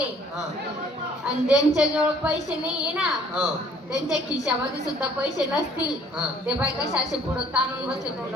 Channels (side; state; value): both; normal; correlation 0.58